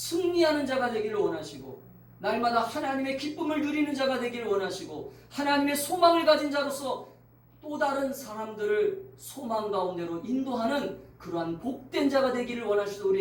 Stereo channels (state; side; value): identical; both; correlation 1.00